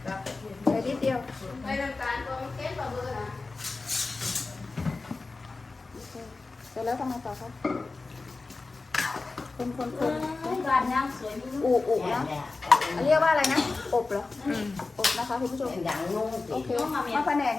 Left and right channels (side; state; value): right; quieter; 3.7 dB